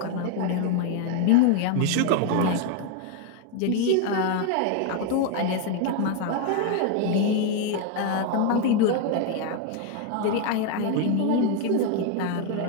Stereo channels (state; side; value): different; both; correlation 0.01